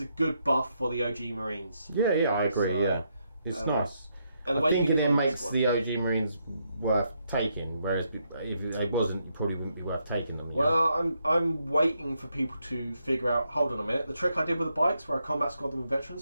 good buff for the OG Marines. Yeah, I agree. So, it's nice. And I think it then makes the OG Marines worth taking, whereas if it wasn't, it probably wouldn't be worth taking them. Well, I'm waiting for people to figure out. Hold on a minute, the trick I did with the bikes, where I combat squad them with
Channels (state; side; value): inverted; both; correlation -0.78